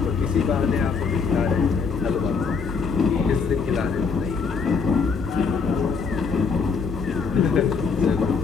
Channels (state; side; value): quieter; right; 5.4 dB